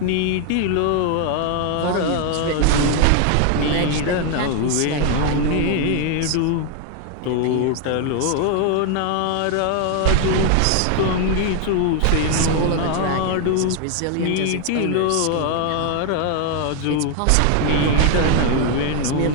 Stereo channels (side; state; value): both; different; correlation 0.00